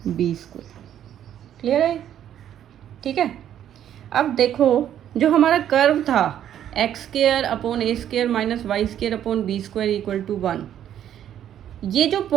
b²। क्लियर है? ठीक है, अब देखो जो हमारा कर्व था x² upon a² minus y² upon b² equal to 1, ये जो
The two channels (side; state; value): left; quieter; 10.5 dB